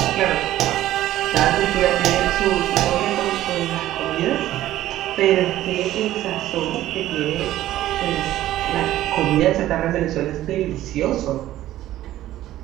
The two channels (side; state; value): left; quieter; 14.1 dB